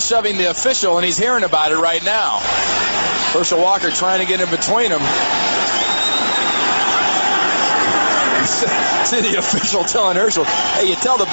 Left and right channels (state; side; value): inverted; both; correlation -1.00